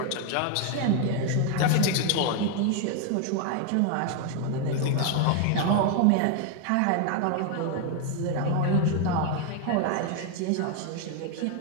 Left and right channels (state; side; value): different; both; correlation 0.01